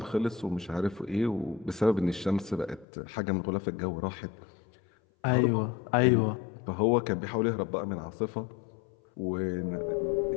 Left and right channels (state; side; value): drops out; right; at 2.9 s